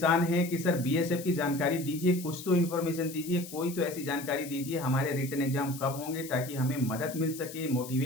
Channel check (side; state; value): left; noise; hiss, 13 dB below the sound